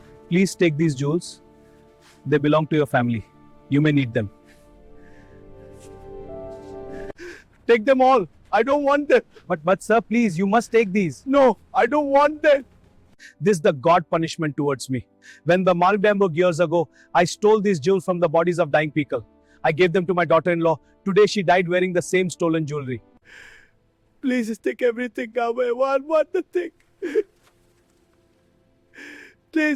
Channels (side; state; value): both; identical; correlation 1.00